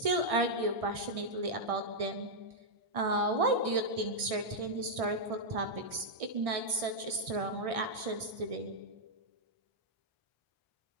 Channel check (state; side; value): late; left; 1.6 ms